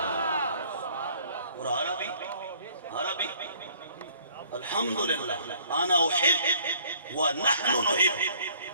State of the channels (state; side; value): inverted; both; correlation -0.58